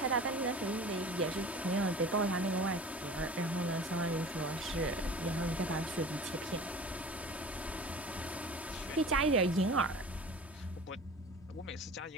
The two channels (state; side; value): normal; both; correlation 0.40